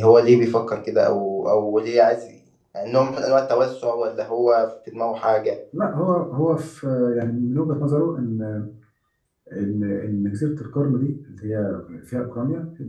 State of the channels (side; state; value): both; identical; correlation 1.00